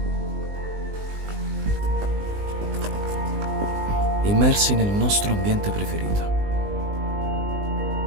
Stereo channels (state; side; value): late; left; 20 ms